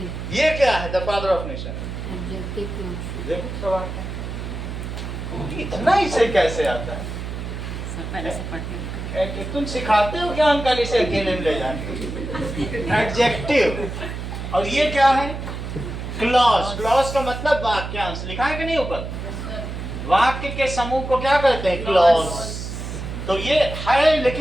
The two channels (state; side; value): noise; right; hum, 7 dB below the sound